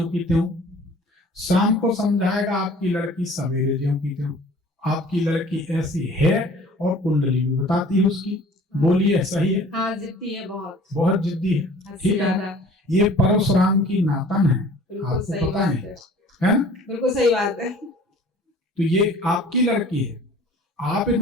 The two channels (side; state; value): both; normal; correlation 0.49